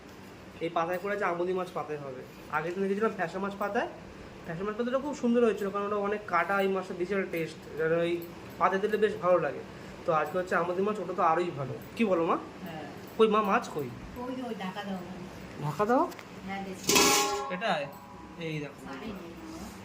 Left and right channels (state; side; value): identical; both; correlation 1.00